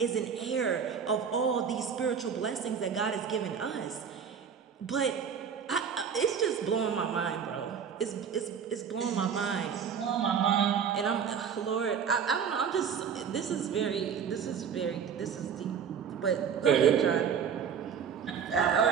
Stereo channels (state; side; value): quieter; left; 7.2 dB